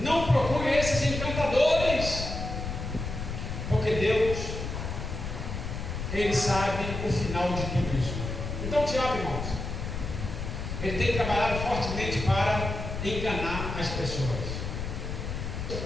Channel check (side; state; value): left; noise; rumble, 5 dB below the sound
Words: procurem esses encantadores, porque Deus, ele sabe o final de tudo isso. Então o diabo, irmãos, ele tem trabalhado fortemente para enganar as pessoas.